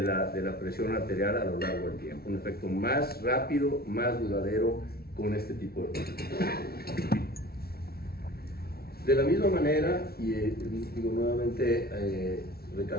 la presión arterial a lo largo del tiempo, un efecto más rápido, más duradero con este tipo de fármacos. De la misma manera, y digo nuevamente,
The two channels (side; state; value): right; late; 0.44 ms